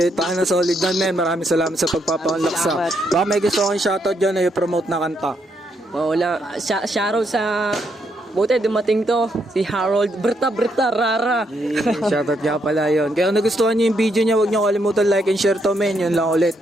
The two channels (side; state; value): both; normal; correlation 0.76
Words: Paano solid na men. Maraming salamat sa pagpapaunlak sa. Baka may gusto kong shoutout dyan na i-promote na kanta. Wala, shoutout sa buti dumating to, si Harold Berta Rara. Shoutout nga pala yun. Kaya kung nagustuhan nyo yung video niya, huwag nyo kalimutan like and share to men. Yun lang ulit.